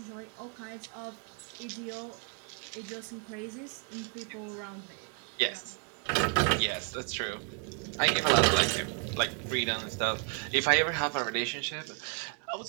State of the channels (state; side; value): quieter; left; 37.8 dB